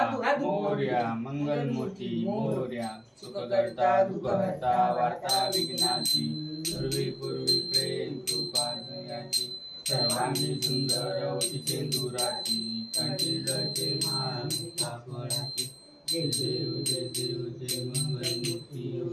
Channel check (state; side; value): identical; both; correlation 1.00